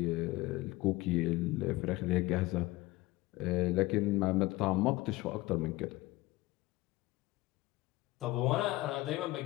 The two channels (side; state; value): right; quieter; 19.6 dB